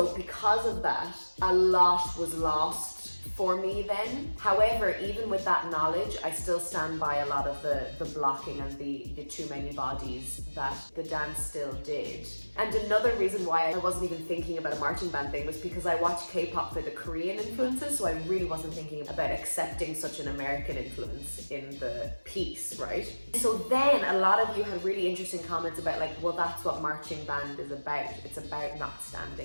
because of that, a lot was lost for me then. However, even with that knowledge, I still stand by a lot of the blocking and the too many bodies that the dance still did. And another reason why I wasn't even thinking about a marching band thing was because I watched K-pop for the Korean influences, so I really wasn't thinking about accepting such an American influence in the piece, right? So then a lot of you had really interesting comments about like, well, that's what marching band is about. It's about not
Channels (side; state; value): both; inverted; correlation -1.00